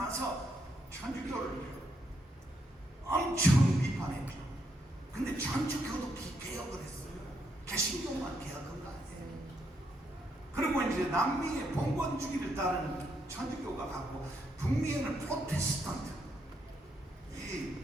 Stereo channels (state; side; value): normal; both; correlation 0.77